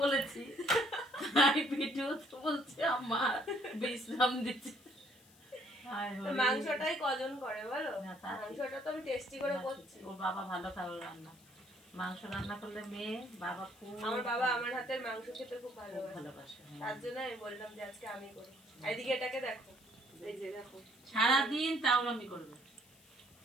বলেছি, ভিডিও তো বলছে আমার বিশ্রাম দিচ্ছে। মাংসটাই কজন করে বলো, মাংসটা তো আমি টেস্টি করে করছি। ওর বাবা ভালো খাবার রান্না, মাংস রান্না করলে মেয়ে বাবা খুব, আমার বাবা আমার হাতের মাংস খেতে খুব ভালোবাসে, তার জন্য আমি বললাম যে আজকে আমি করি। এদিকে এটাকে দেখো, এই যে দেখো সারাদিন তাওরামি করবে,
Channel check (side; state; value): left; noise; hiss, 26 dB below the sound